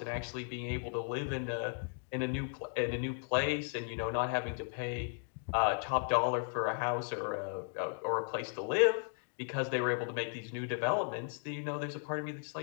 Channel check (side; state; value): right; silent; 54 dB below the other